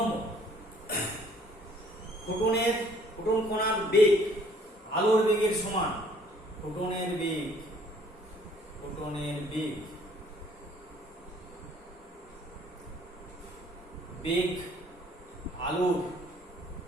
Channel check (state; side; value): normal; both; correlation 0.59